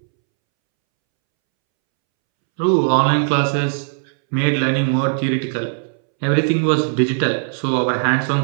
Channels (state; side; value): silent; left; 67 dB below the other